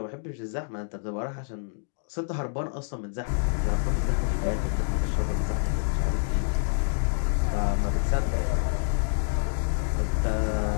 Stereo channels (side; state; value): right; silent; digital silence